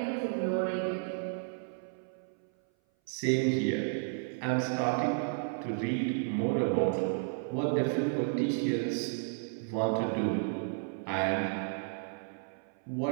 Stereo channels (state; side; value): silent; left; 56 dB below the other